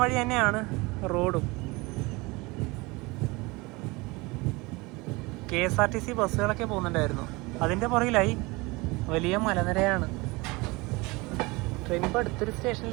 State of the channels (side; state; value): left; quieter; 24.2 dB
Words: വഴി തന്നെയാണ് റോഡും. KSRTC ബസ്സുകളൊക്കെ പോകുന്നുണ്ടായിരുന്നു. അതിൻ്റെ പുറകിലായി വലിയ മലനിരയാണ്. ട്രെയിൻ ഇപ്പോൾ അടുത്തൊരു